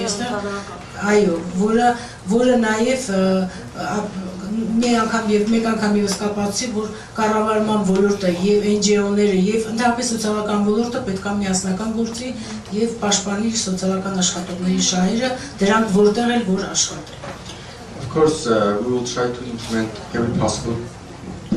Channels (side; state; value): both; identical; correlation 1.00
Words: այստեղ, այո, որը նաև մեկ անգամ ևս կապացուցի, որ կառավարման ոլորտը եւ NGO-ները եւ ընդհանրապես սոցիալական ոլորտը պետք է միասնական գործի եւ պաշտպանի սոցիալական աշխատողների շահերը, դրանք որտեղ էլ որ աշխատեն։ Of course, we will try to implement every possible